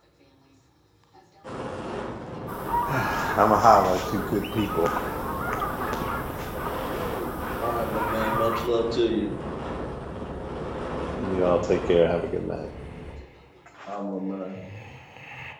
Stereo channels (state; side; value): identical; both; correlation 1.00